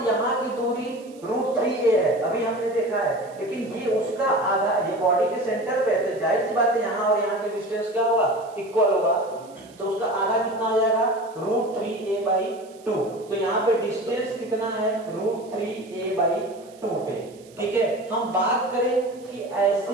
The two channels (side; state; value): right; noise; hiss, 26 dB below the sound